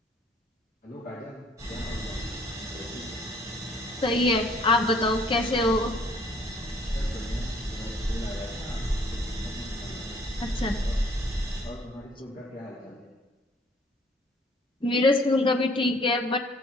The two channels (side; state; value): both; normal; correlation 0.60